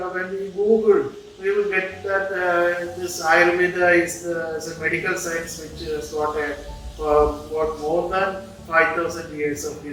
we Google, we will get that this Ayurveda is a medical science which has got more than 5,000 years of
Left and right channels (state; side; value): identical; both; correlation 1.00